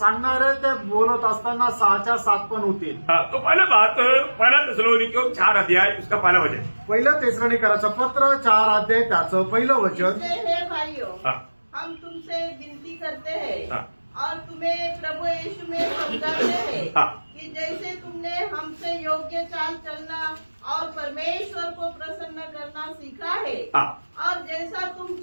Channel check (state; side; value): inverted; both; correlation -1.00